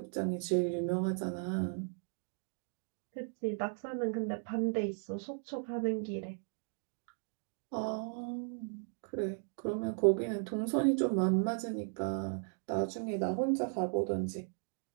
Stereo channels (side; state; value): left; silent; 53 dB below the other